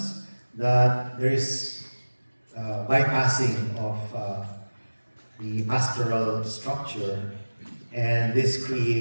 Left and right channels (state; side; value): inverted; both; correlation -1.00